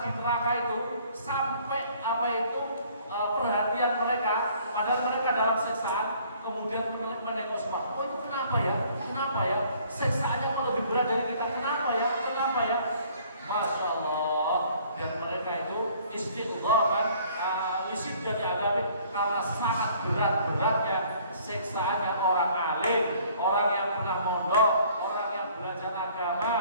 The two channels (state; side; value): inverted; both; correlation -0.57